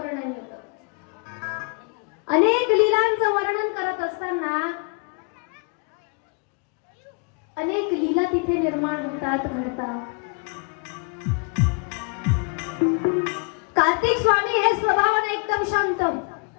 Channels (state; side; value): quieter; right; 35.8 dB